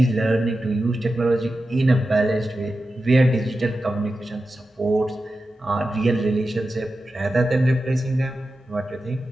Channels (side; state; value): both; normal; correlation 0.92